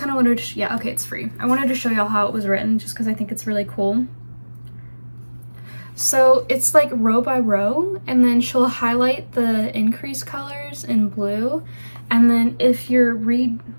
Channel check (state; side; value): inverted; both; correlation -1.00